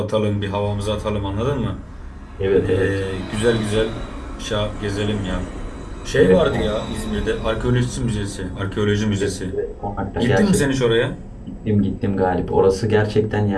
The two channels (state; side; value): identical; both; correlation 1.00